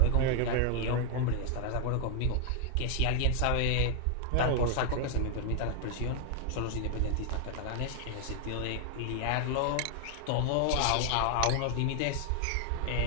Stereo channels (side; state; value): both; different; correlation 0.00